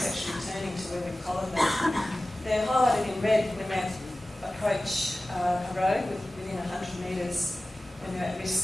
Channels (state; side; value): normal; both; correlation 0.96